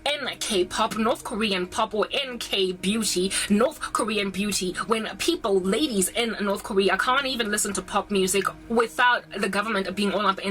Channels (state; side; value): identical; both; correlation 1.00